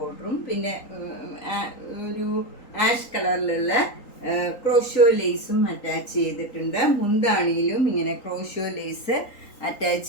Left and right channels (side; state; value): right; late; 3.8 ms